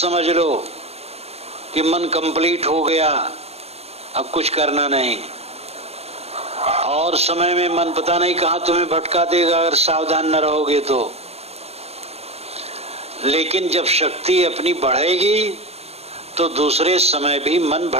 लो कि मन कंप्लीट हो गया, अब कुछ करना नहीं। और समय में मन पता नहीं कहां तुम्हें भटका देगा अगर सावधान न रहोगे तो। लेकिन जब शक्ति अपनी बढ़ेगी तो दूसरे समय भी मन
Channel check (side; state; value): left; late; 0.30 ms